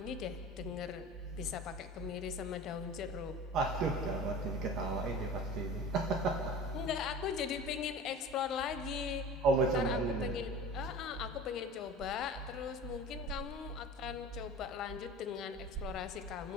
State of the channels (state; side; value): normal; both; correlation 0.37